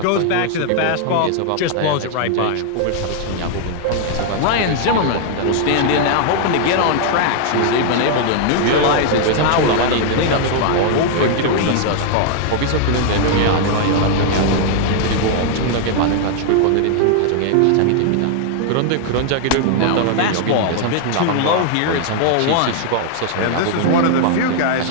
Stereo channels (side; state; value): both; different; correlation 0.00